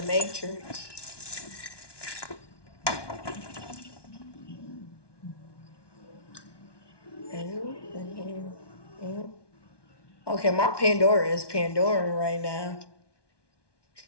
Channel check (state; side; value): late; right; 1.2 ms